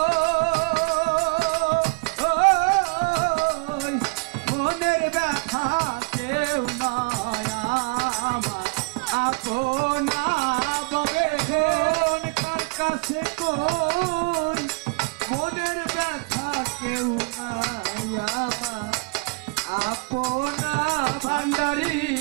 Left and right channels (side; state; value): left; quieter; 30.2 dB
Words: মনের ব্যথা কেউ নয় আমার আপনা ববে কার কাছে কই মনের ব্যথা কেউ নাই আমার আপনা ভান্ডারি